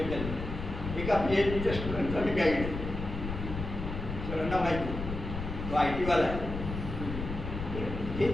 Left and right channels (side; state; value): left; noise; rumble, 6 dB below the sound